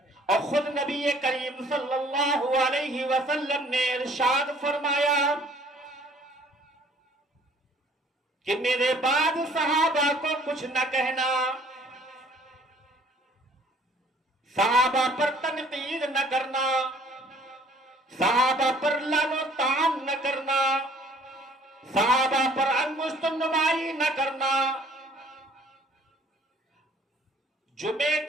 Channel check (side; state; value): both; normal; correlation 0.56